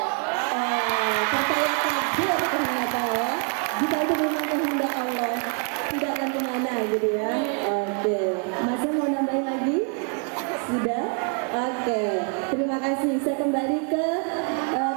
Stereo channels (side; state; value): left; quieter; 38.7 dB